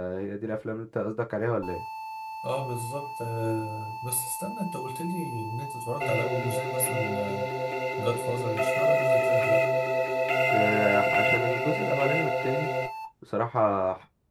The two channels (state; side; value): identical; both; correlation 1.00